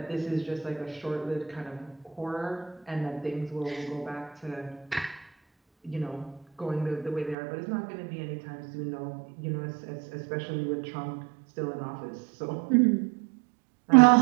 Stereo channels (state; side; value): drops out; left; at 7.4 s